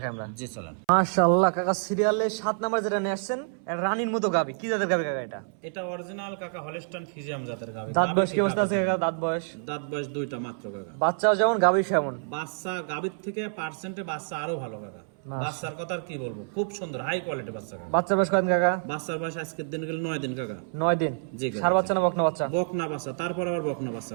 আমরা। জি চলেন। মাশাআল্লাহ কাকা, সিরিয়ালে 7 নাম্বার যেটা নিয়ে আসছেন, রানীর মতো গাবি। কি জাতের গাবি কাকা এটা? এটা অরিজিনাল কাকা হলস্টাইন ফ্রিজিয়ান জাতের গাবি। দাঁত বয়স কি অবস্থা আছে কাকা? দাঁত বয়স? দাঁত বয়স 2টা মাত্র কাকা। বাচ্চাও যেমন গাবি সেমন। বাচ্চা গাবির থেকে পার্সেন্টে বাচ্চা আরো ভালো কাকা। বাচ্চার কথা আর কি বলবো, খুব সুন্দর হাই কোয়ালিটি বাচ্চা কাকা। বাচ্চার বয়স কয়দিন কাকা? বাচ্চার বয়স আজকের দিন গেলে 9 দিন কাকা। 9 দিন। জি কাকা। সার বাচ্চা না বকনা বাচ্চা? বকনা বাচ্চা, তারপর আবার বকনা বাচ্চা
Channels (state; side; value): silent; left; 60 dB below the other